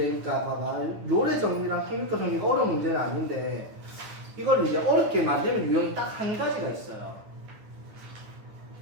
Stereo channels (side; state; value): left; late; 9.5 ms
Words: 그러니까 봐봐 노래 정리랑 평균가 정리가 어려운 문제는 아닌데 이걸 이제 어렵게 만드는 유형이 딱 한 가지가 있어요.